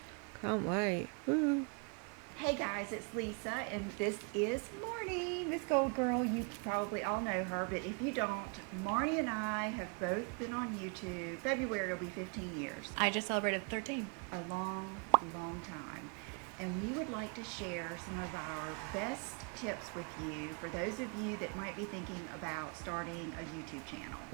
Can't wait. Woo. Hey guys, it's Lisa, and this is Marnie, MsGoldgirl. You probably all know her, but if you don't, Marnie and I have both been on YouTube. February will be 15 years. I just celebrated 13. A long, long time. And we would like to share some of our best tips with you for those of you that might be thinking about starting a YouTube channel.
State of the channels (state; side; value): quieter; left; 36.3 dB